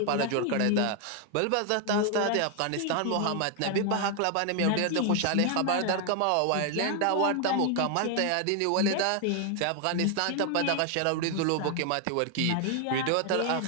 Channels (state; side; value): different; both; correlation 0.00